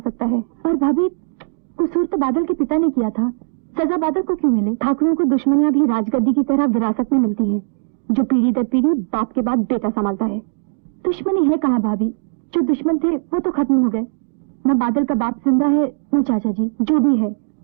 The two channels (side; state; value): left; silent; digital silence